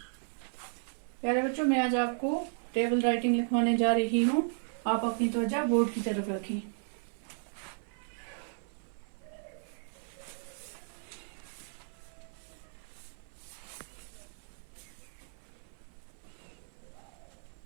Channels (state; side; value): silent; left; 55 dB below the other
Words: प्यारे बच्चों, मैं आज आपको टेबल राइटिंग लिखवाने जा रही हूँ। आप अपनी तवज्जो बोर्ड की तरफ रखें।